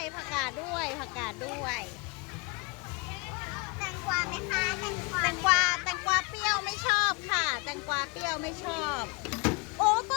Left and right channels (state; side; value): quieter; right; 29.3 dB